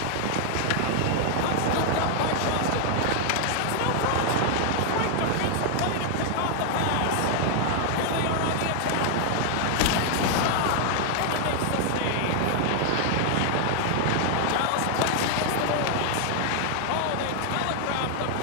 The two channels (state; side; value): different; both; correlation 0.00